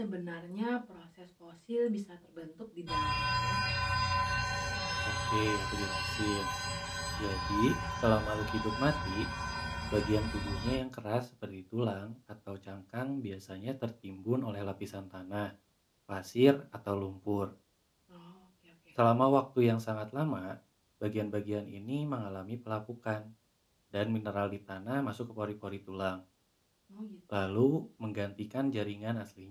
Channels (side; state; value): both; identical; correlation 1.00